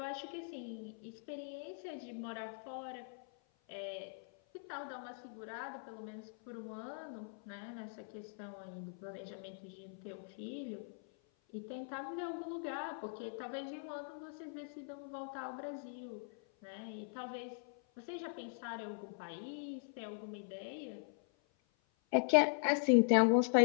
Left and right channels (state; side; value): silent; right; 50 dB below the other